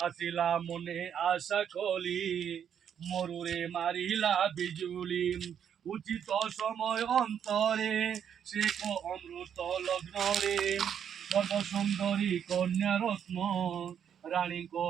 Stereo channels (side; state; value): left; quieter; 8.5 dB